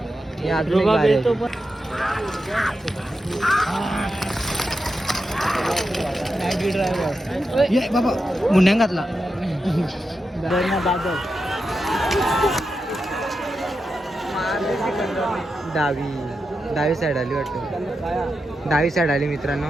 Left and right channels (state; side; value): normal; both; correlation 0.89